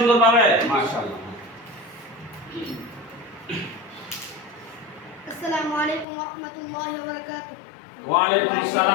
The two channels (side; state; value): right; drops out; at 6.1 s